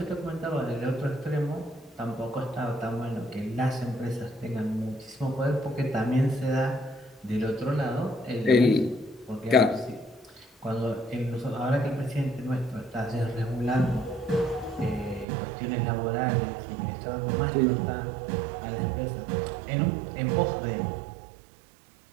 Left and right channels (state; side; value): drops out; left; at 15.2 s